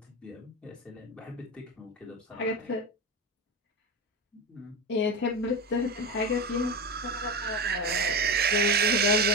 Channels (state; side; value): normal; both; correlation 0.21